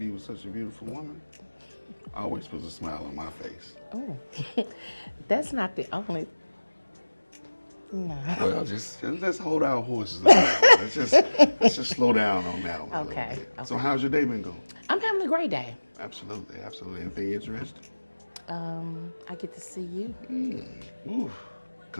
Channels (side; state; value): both; inverted; correlation -1.00